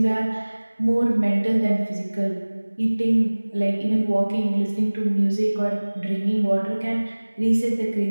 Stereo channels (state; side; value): inverted; both; correlation -1.00